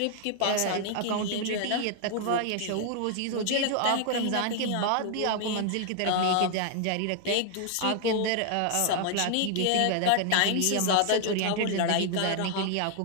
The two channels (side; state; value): both; different; correlation 0.00